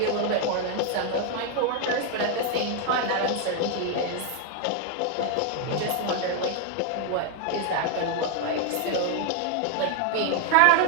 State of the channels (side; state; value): both; different; correlation 0.00